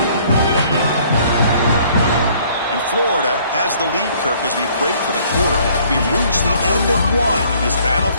Florida has the lead, Kirk, as we break for the quarter. We've reached the end of one in this battle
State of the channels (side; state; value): both; inverted; correlation -0.59